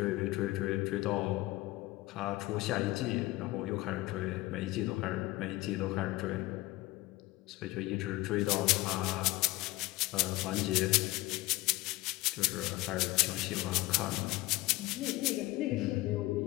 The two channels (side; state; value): right; quieter; 19.3 dB